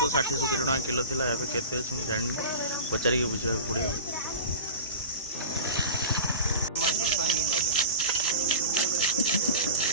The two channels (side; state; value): both; inverted; correlation -0.31